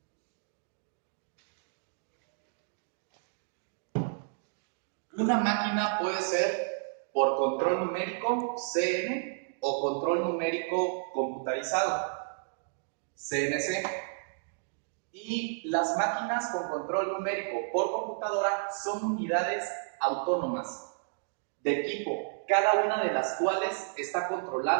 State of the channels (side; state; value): left; silent; digital silence